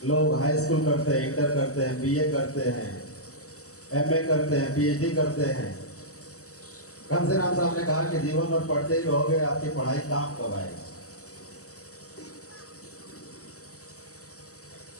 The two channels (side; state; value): right; late; 0.66 ms